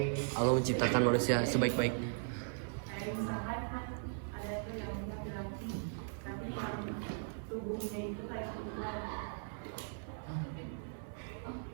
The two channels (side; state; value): left; silent; 52 dB below the other